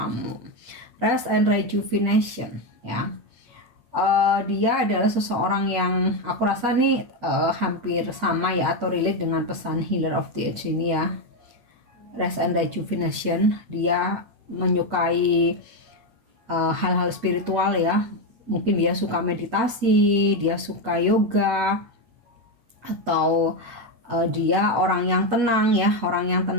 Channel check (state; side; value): late; left; 8.4 ms